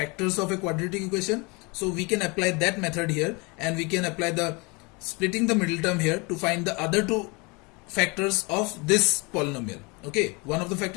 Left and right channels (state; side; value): quieter; right; 28.4 dB